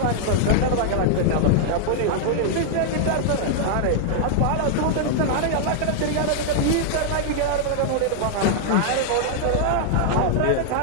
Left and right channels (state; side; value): different; both; correlation -0.01